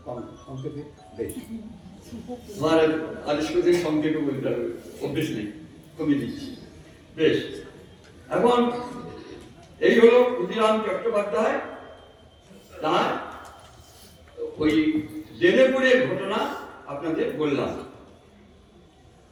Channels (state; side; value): identical; both; correlation 1.00